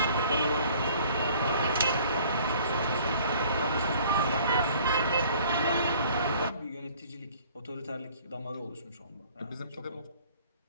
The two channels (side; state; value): both; inverted; correlation -0.53